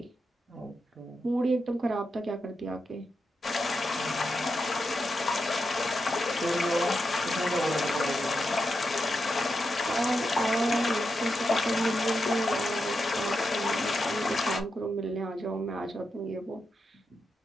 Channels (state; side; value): normal; both; correlation 0.86